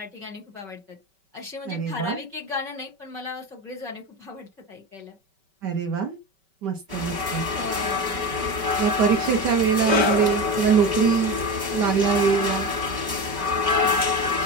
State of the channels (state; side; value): late; left; 5.2 ms